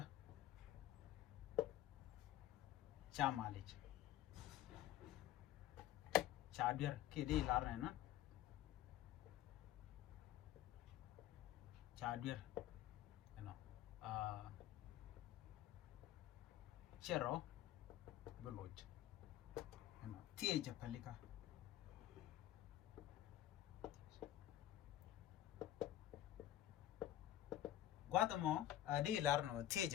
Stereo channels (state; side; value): quieter; right; 12.9 dB